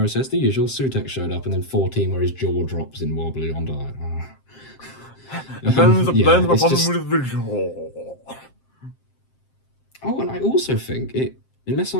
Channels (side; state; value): right; late; 7.6 ms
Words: says, "The usual." Sutek showed up, and then 14 where his jaw drops in wobbly on diet. There's a problem with the jaw. Oh, and I also think unless